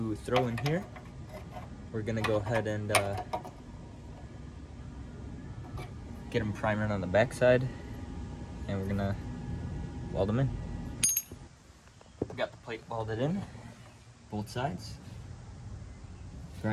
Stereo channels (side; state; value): both; identical; correlation 1.00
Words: throw in here, we're gonna go ahead and get them primered on the back side, and we're gonna weld them in. We got the plate welded in, both sides,